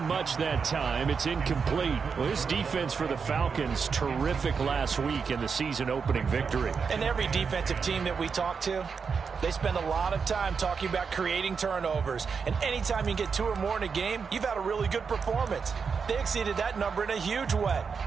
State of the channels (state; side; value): quieter; left; 5.7 dB